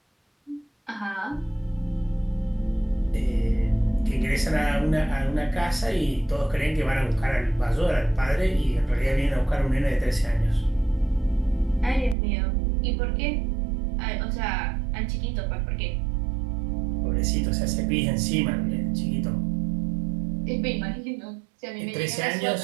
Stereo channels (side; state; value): left; drops out; at 12.2 s